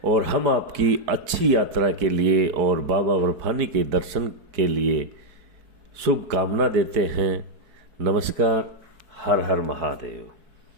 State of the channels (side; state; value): left; late; 4.6 ms